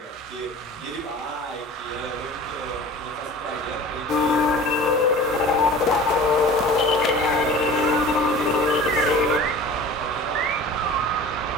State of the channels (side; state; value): both; normal; correlation 0.41